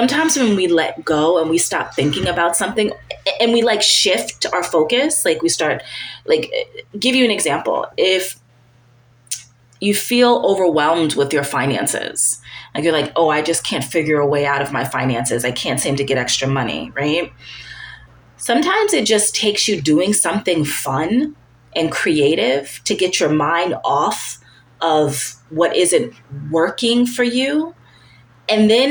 when we let go and we stop thinking about something and we like shift our focus, like we start, like, give you an example. If you feel overwhelmed with your finances, like you're like, oh, I just can't figure a way out of my finances. I can't seem to get extra money, right? Sometimes it just takes you doing something fun and creative to get your mind off of what isn't working for you. And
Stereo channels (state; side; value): identical; both; correlation 1.00